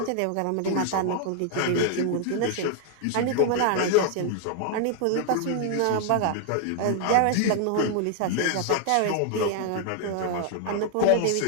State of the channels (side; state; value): both; different; correlation 0.00